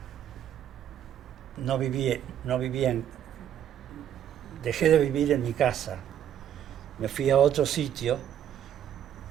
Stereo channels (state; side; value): quieter; left; 10.1 dB